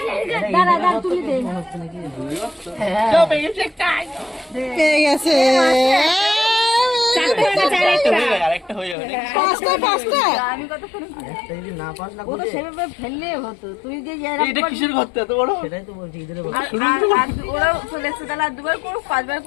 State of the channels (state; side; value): drops out; right; at 9.0 s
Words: দাঁড়া তুলে দে। পেয়ে গেছে ও তো সেভাবে ফেললে হতো, তুই যে